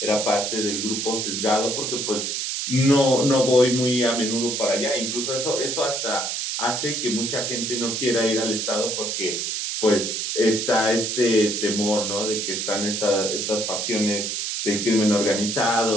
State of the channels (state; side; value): noise; right; hiss, 2 dB below the sound